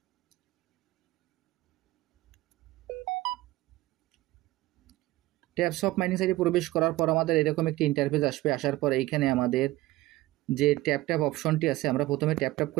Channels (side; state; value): left; quieter; 17.9 dB